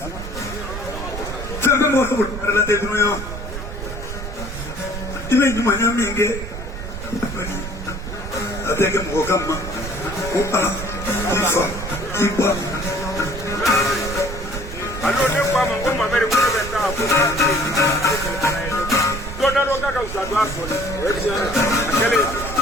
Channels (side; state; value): right; noise; rumble, 8 dB below the sound